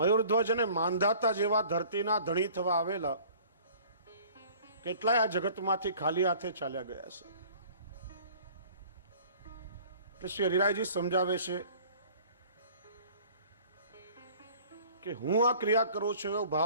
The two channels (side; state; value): both; inverted; correlation -0.50